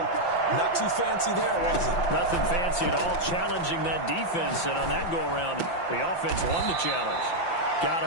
Not too fancy there, was it? Nothing fancy at all, challenging that defense. And on that go-around, the offense won the challenge. Got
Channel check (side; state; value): right; late; 5.8 ms